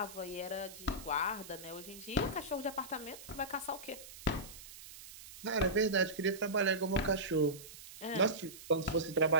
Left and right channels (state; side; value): noise; right; hiss, 15 dB below the sound